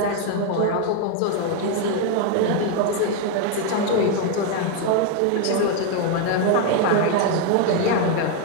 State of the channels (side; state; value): both; different; correlation 0.01